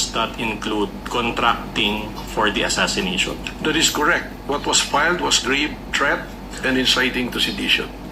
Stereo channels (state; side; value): identical; both; correlation 1.00